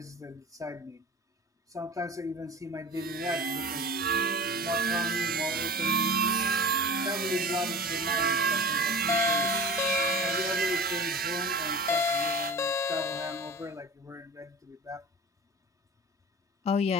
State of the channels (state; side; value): normal; both; correlation 0.36